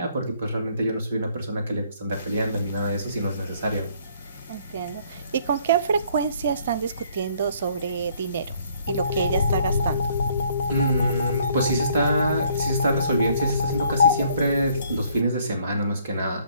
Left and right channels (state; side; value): inverted; both; correlation -0.63